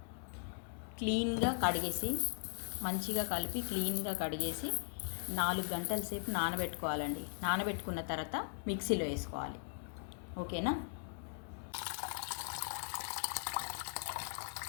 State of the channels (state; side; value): silent; right; digital silence